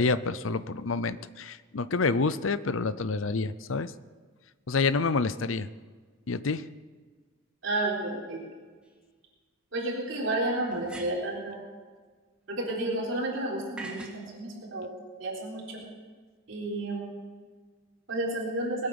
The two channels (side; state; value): both; normal; correlation 0.07